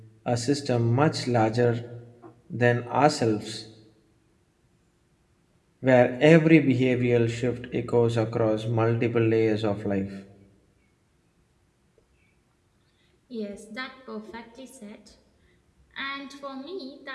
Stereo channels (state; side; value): identical; both; correlation 1.00